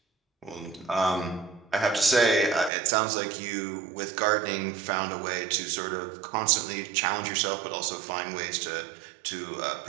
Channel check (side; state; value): left; drops out; at 2.7 s